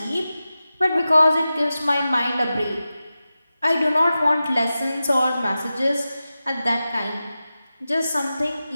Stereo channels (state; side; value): inverted; both; correlation -0.94